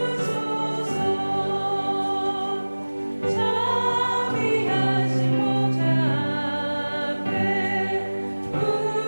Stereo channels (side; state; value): both; inverted; correlation -1.00